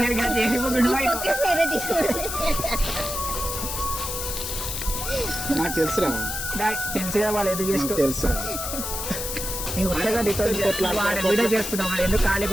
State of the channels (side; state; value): left; noise; hiss, 4 dB below the sound